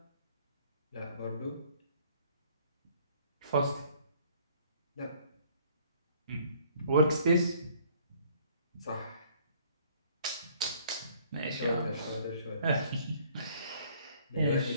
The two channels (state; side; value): inverted; both; correlation -0.59